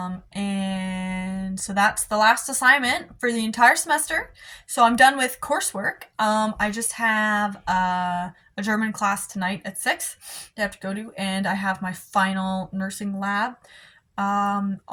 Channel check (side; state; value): both; identical; correlation 1.00